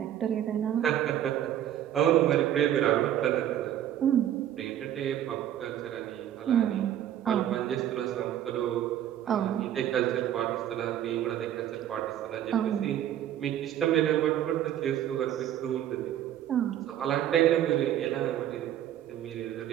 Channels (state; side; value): quieter; left; 11.2 dB